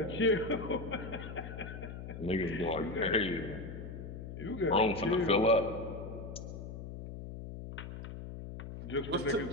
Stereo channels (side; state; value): left; noise; hum, 9 dB below the sound